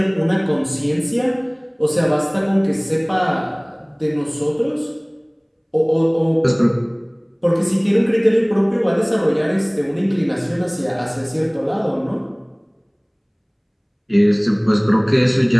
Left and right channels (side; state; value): both; identical; correlation 1.00